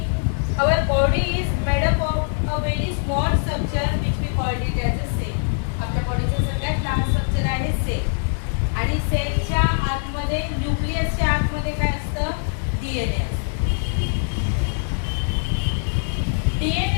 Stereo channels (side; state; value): right; silent; 64 dB below the other